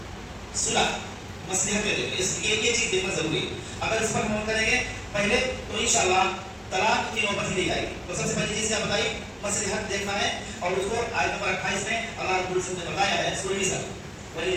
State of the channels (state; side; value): identical; both; correlation 1.00